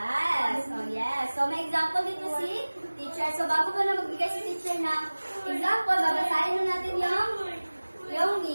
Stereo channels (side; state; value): both; inverted; correlation -1.00